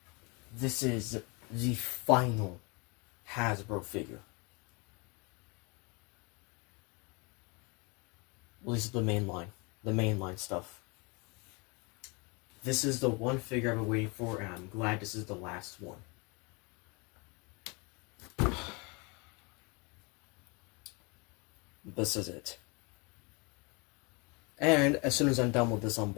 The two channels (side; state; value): right; quieter; 29.9 dB